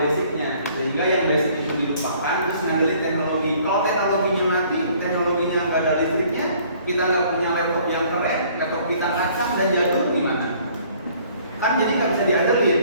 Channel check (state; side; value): inverted; both; correlation -0.58